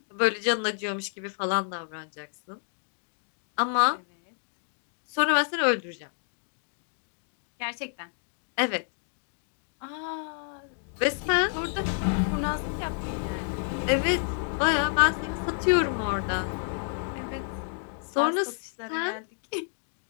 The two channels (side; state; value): right; silent; 58 dB below the other